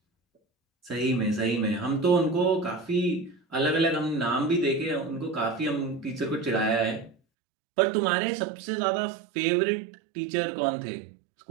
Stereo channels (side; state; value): left; drops out; at 7.2 s